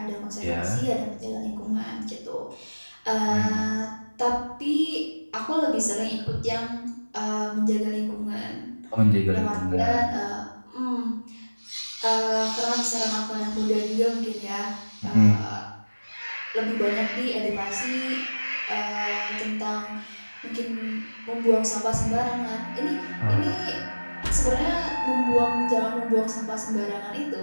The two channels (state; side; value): inverted; both; correlation -1.00